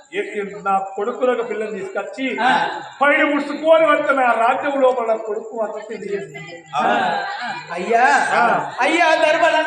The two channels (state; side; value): identical; both; correlation 1.00